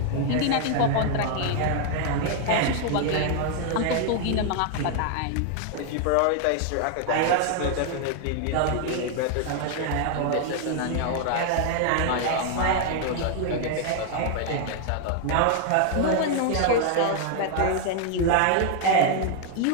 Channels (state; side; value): different; both; correlation 0.00